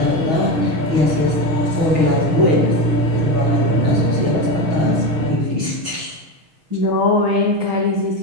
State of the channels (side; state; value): left; late; 6.3 ms